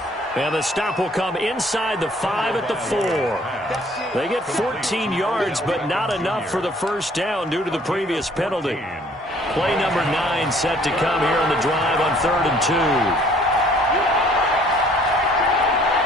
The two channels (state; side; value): normal; both; correlation 0.58